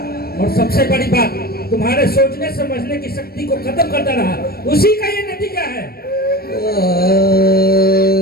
और सबसे बड़ी बात तुम्हारे सोचने समझने की शक्ति को खत्म करता रहा। उसी का ये नतीजा है।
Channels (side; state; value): right; late; 0.44 ms